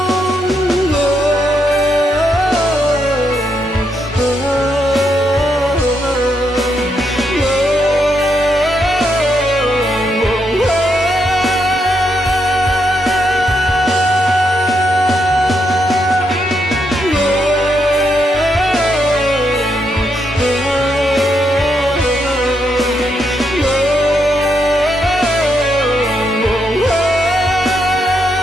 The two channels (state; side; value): normal; both; correlation 0.79